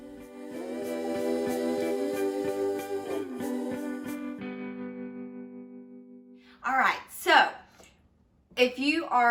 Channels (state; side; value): identical; both; correlation 1.00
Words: All right, so if you